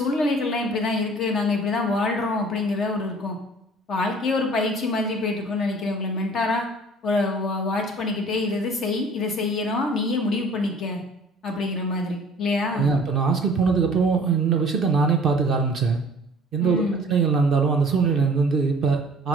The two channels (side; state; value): both; normal; correlation 0.50